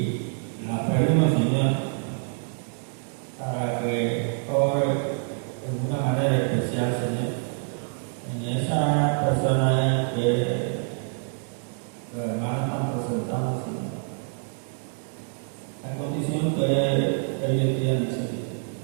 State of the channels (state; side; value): silent; left; 61 dB below the other